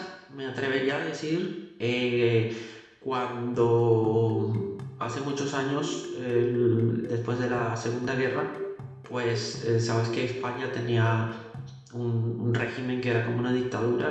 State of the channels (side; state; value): both; identical; correlation 1.00